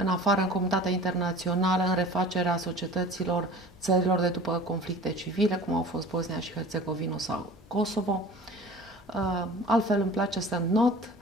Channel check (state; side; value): normal; both; correlation 0.42